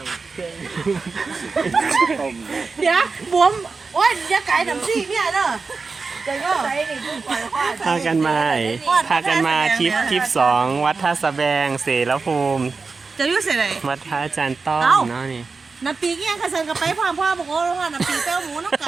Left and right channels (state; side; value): quieter; left; 4.4 dB